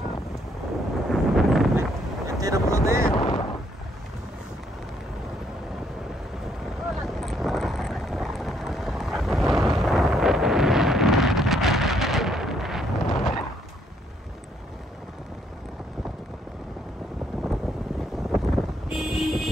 Tidak perlu deh.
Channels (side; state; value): both; normal; correlation 0.71